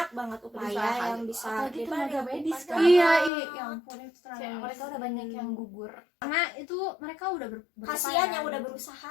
banget upaya Berusaha. yang bisa Apalagi tenaga medis kan. Iya, ya ampun itu tenaga Kayak medis. mereka udah banyak yang gugur. Karena itu mereka udah kasihan yang gitu. udah berusaha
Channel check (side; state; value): right; drops out; at 3.3 s